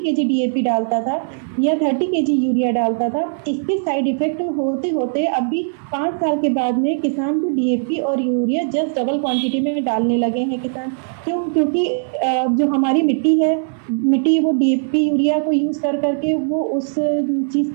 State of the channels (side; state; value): left; silent; 66 dB below the other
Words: kg डीएपी डालता था या 30 kg यूरिया डालता था, इसके साइड इफेक्ट होते होते अभी 5 साल के बाद में किसान को डीएपी और यूरिया जस्ट डबल क्वांटिटी में डालने लगे हैं किसान। क्यों? क्योंकि जो हमारी मिट्टी है मिट्टी वो डीएपी यूरिया को यूज़ कर करके वो उस चीज़